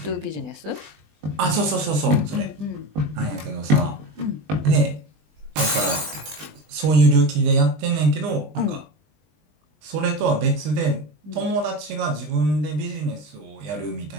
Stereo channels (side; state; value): left; late; 20 ms